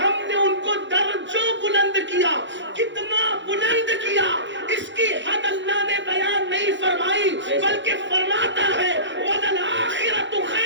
ہم نے ان کو درجوں بلند کیا۔ کتنا بلند کیا اس کی حد اللہ نے بیان نہیں فرمائی، بلکہ فرماتا ہے وَلَلْآخِرَةُ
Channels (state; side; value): late; left; 0.54 ms